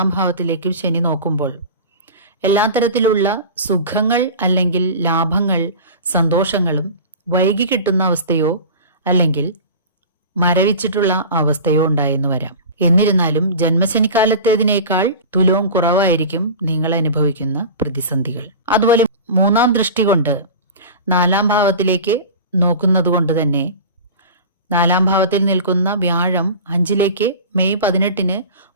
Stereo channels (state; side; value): inverted; both; correlation -0.34